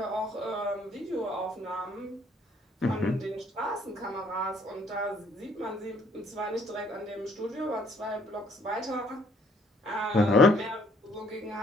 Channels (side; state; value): both; normal; correlation 0.64